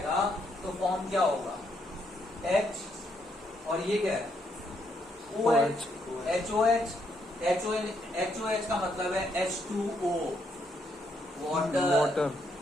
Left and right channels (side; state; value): both; normal; correlation 0.75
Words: तो फॉर्म क्या होगा, H, और ये क्या है OH, HOH का मतलब है H2O, वाटर।